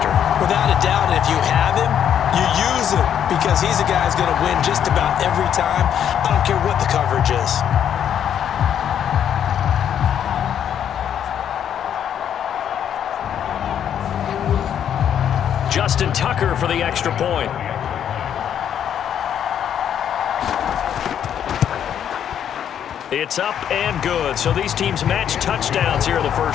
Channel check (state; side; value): quieter; right; 9.3 dB